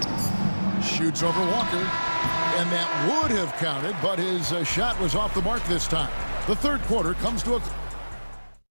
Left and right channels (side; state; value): both; inverted; correlation -1.00